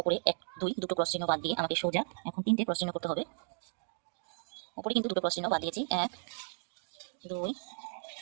1 2 দুটো ক্রস চিহ্ন বাদ দিয়ে আমাকে সোজা এখন 3টে ক্রস চিহ্ন করতে হবে। উপরে কিন্তু দুটো ক্রস চিহ্ন বাদ দিয়েছি। 1 2।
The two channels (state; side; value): silent; left; digital silence